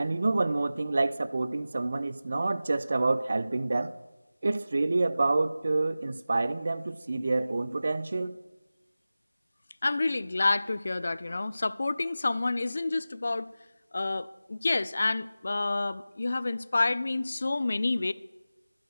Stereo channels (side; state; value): both; inverted; correlation -0.95